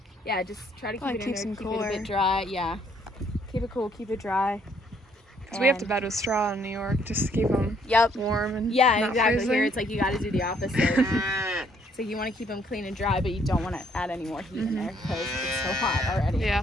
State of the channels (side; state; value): both; normal; correlation 0.67